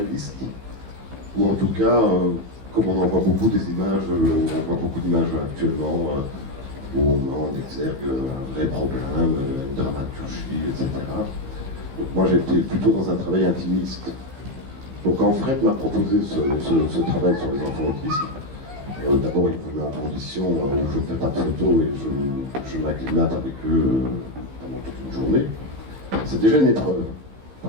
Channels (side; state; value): left; late; 15 ms